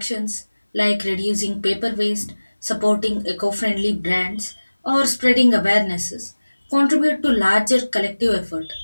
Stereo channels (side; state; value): both; inverted; correlation -1.00